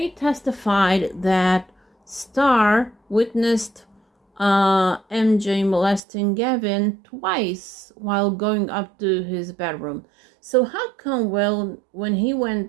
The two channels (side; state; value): left; drops out; at 6.0 s